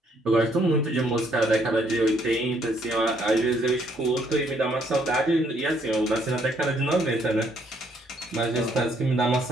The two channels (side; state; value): both; normal; correlation 0.68